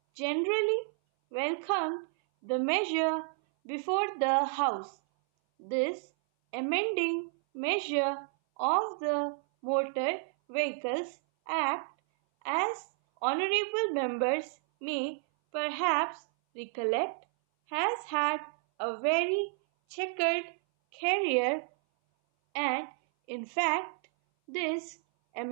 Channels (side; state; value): left; silent; 57 dB below the other